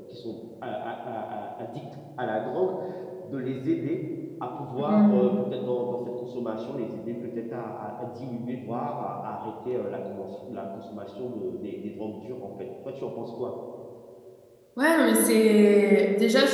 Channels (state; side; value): identical; both; correlation 1.00